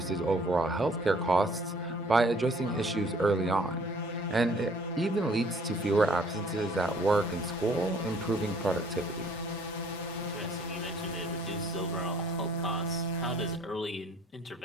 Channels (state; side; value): normal; both; correlation 0.58